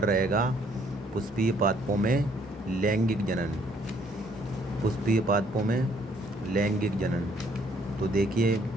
रहेगा पुष्पीय पादपों में लैंगिक जनन। पुष्पीय पादपों में लैंगिक जनन। तो देखिए,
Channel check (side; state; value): both; normal; correlation 0.65